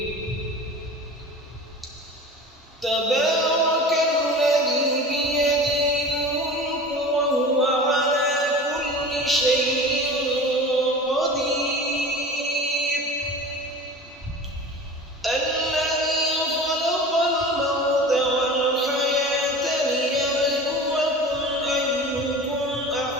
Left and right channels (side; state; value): both; normal; correlation 0.36